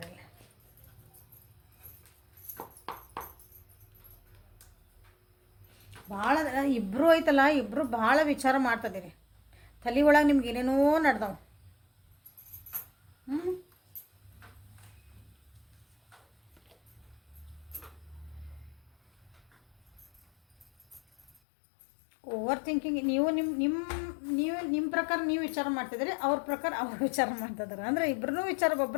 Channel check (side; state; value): right; drops out; at 21.3 s